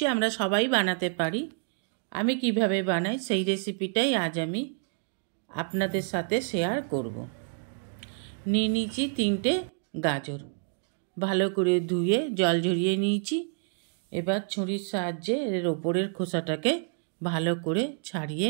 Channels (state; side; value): silent; left; 59 dB below the other